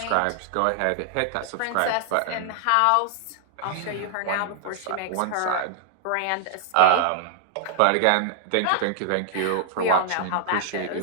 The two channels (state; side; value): different; both; correlation -0.01